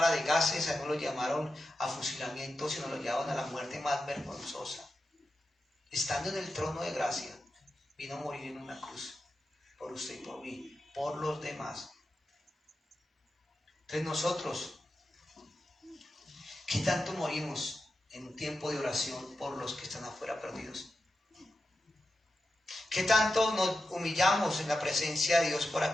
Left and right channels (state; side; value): normal; both; correlation 0.91